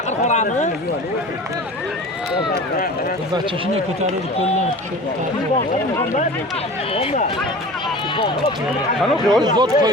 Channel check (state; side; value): normal; both; correlation 0.38